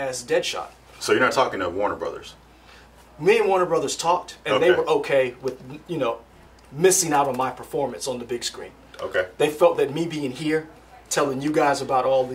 Deadshot. So you're not talking to Warner Brothers? Me and Warner Brothers talked, and they were okay with, missing out on my performance on the big screen. Okay. They felt that me being here, telling you guys about all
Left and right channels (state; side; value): identical; both; correlation 1.00